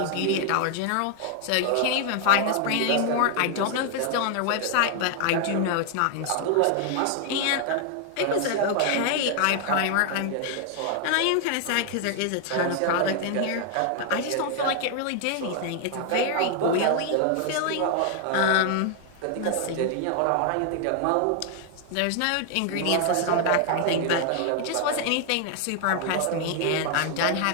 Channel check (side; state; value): both; different; correlation 0.00